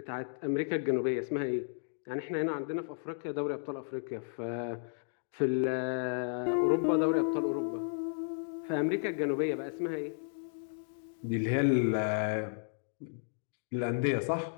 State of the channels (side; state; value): right; silent; digital silence